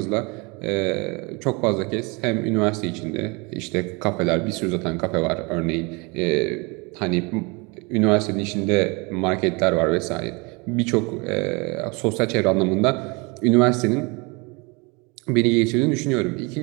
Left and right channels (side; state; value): left; quieter; 28.7 dB